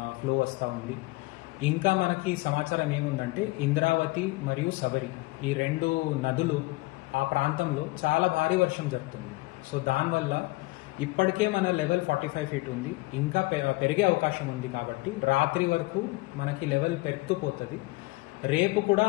ఫ్లో వస్తూ ఉంది. ఇంకా మనకి సమాచారం ఏముందంటే ఇంద్రావతి మరియు శబరి ఈ రెండు నదులు ఆ ప్రాంతంలో చాలా భారీ వర్షం జరుగుతుంది. సో దానివల్ల ఇప్పటికే మన లెవెల్ 45 ఫీట్ ఉంది, ఇంకా పెరిగే అవకాశం ఉంది. కాబట్టి రాత్రి వరకు మనకి లెవెల్ పెరుగుతూ పోతుంది. రేపు కూడా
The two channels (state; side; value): quieter; right; 22.1 dB